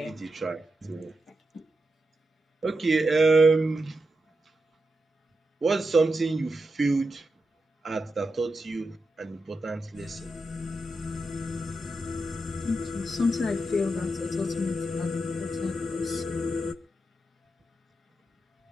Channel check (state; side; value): normal; both; correlation 0.88